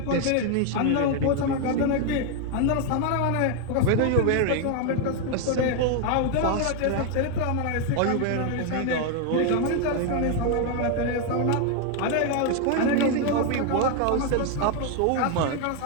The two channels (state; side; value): different; both; correlation 0.01